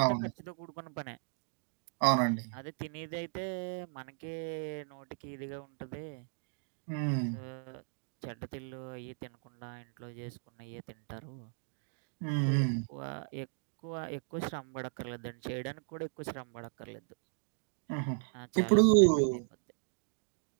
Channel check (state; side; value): silent; left; digital silence